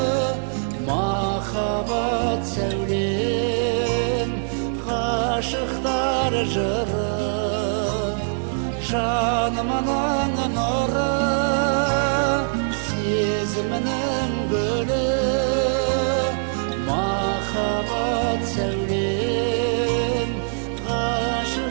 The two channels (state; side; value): silent; left; digital silence